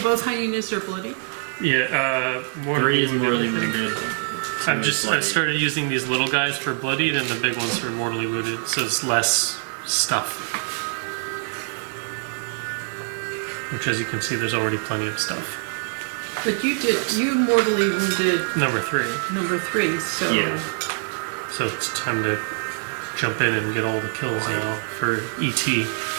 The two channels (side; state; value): left; silent; 60 dB below the other